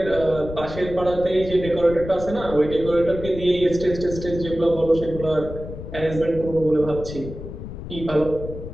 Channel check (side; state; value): left; noise; rumble, 10 dB below the sound